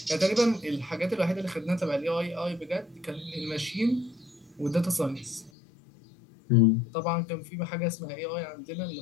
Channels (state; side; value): drops out; right; at 5.5 s